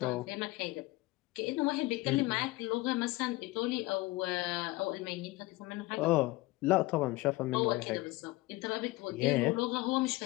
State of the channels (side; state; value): right; quieter; 20.5 dB